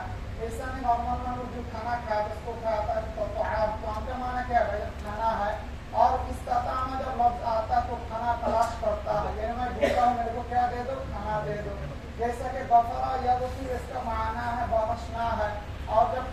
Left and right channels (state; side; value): identical; both; correlation 1.00